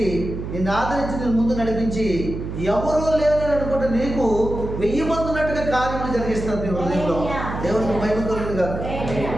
నిన్ను ఆదరించి, నేను ముందు నడిపించి, ఎవరో లేదని అనుకుంటే నీకు 1000 మంది ఉన్నట్టుగా కార్యములు జరిగిస్తుంది నీ హృదయంలో. దేవునికి మహిమ కలుగును గాక.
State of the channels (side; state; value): right; noise; hum, 6 dB below the sound